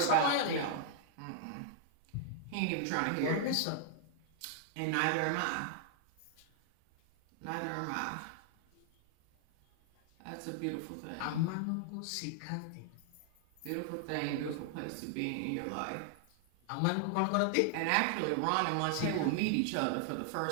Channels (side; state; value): both; different; correlation 0.00